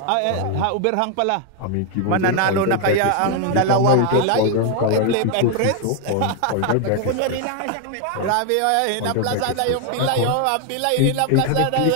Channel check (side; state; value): both; different; correlation 0.01